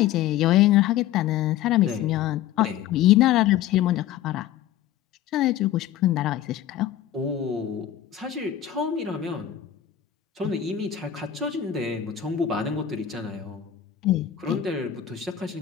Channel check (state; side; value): quieter; right; 11.1 dB